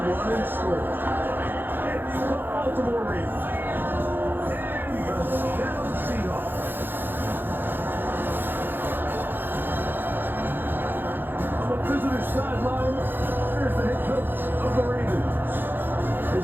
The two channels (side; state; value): left; late; 0.097 ms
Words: one in score. It's the Baltimore Ravens and the Seattle Seahawks. On the visitor sideline, there's the head coach of the Ravens.